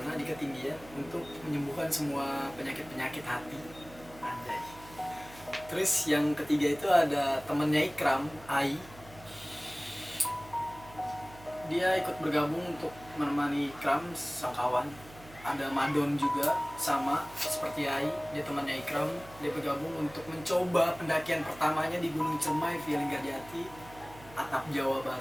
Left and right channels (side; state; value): right; noise; hum, 20 dB below the sound